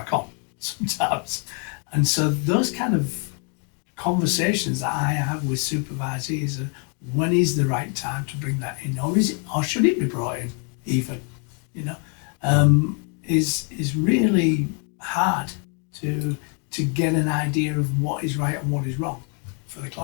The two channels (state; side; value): quieter; right; 36.4 dB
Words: on sometimes? And so those kind of conversations that I have with supervisees are, when is the right time to bring that in, or should it be brought in even, you know, is really hard to get an idea of what is right and what is wrong for the